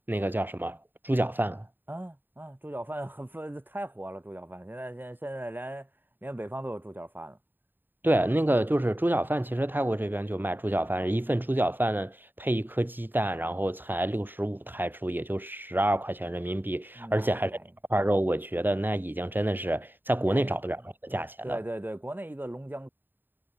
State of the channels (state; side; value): late; left; 0.093 ms